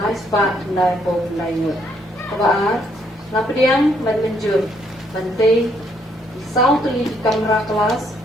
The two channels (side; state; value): both; normal; correlation 0.70